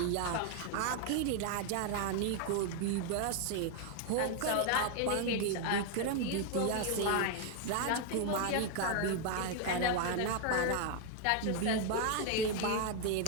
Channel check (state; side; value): different; both; correlation 0.01